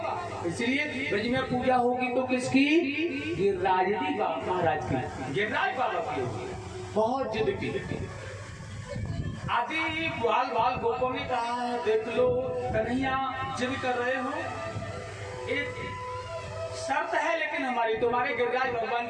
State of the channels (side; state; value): both; identical; correlation 1.00